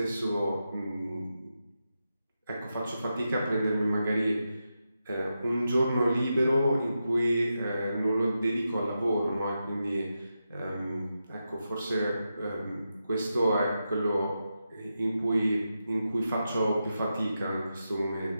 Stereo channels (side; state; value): both; inverted; correlation -0.88